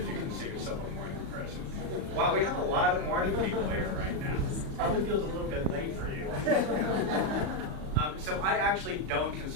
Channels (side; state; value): left; late; 37 ms